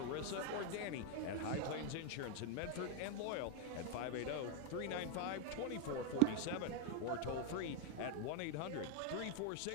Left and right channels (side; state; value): both; different; correlation 0.02